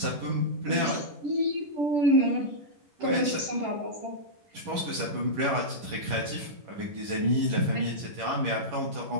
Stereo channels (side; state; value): left; late; 11 ms